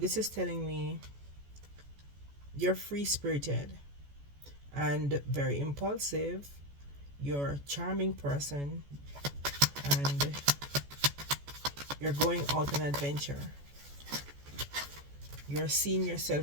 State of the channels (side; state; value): left; late; 14 ms